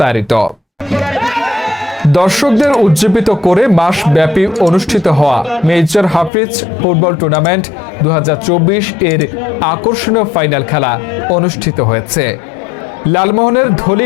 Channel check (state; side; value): drops out; right; at 6.3 s